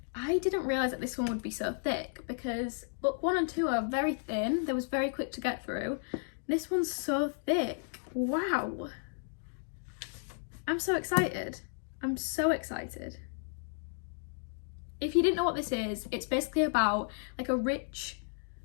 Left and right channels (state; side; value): silent; right; digital silence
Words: I didn't realise that this one would be so thick, because book 1 and 2 are very thin. They was very quick to get through. This one's so thick. Wow. I'm so excited. I'm so excited. If you didn't know what this is, it's basically about like a rich